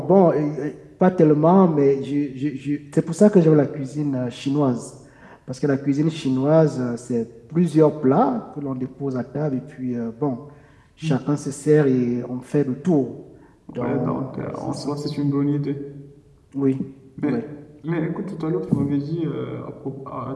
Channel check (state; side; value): identical; both; correlation 1.00